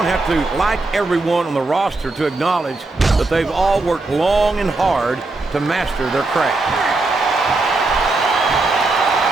have to like everyone on the roster to acknowledge that they've all worked long and hard to master their craft.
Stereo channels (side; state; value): left; quieter; 3.3 dB